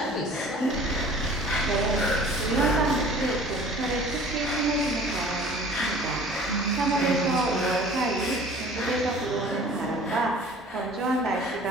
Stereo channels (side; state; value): both; normal; correlation 0.47